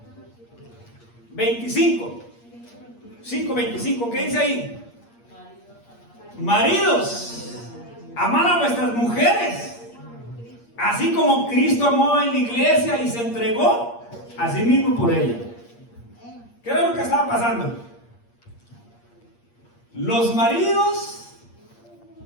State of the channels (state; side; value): late; right; 8.5 ms